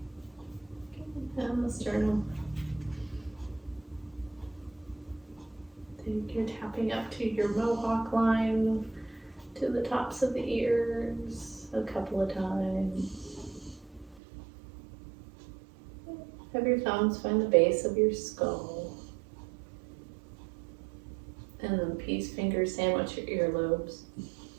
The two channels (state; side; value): drops out; left; at 14.2 s